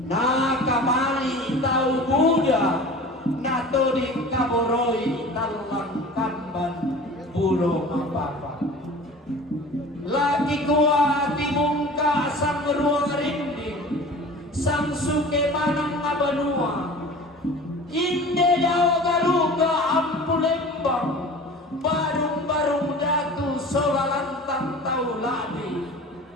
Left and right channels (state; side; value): normal; both; correlation 0.40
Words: nakamali tau Buddha natoding kaboroi talang kamban bulo mapapa laki kuat timungka sang ruang rinding sang suke manang abanua inde dao garuga ampulembang barung-barung datu solalantang tau ladi